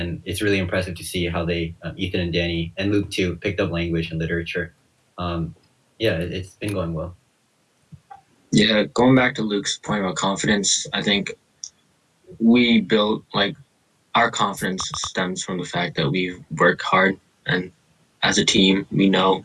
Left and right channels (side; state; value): both; identical; correlation 1.00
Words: it's really impressive to see how they, Ethan and Danny and Luke too, picked up language and literature. Yeah, it's been going well. Yeah, going back to Luke's point about confidence, I think we built our confidence stems from the fact that we work hard, and as a team, we know